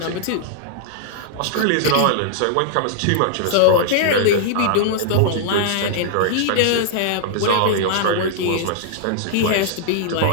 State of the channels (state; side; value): different; both; correlation -0.01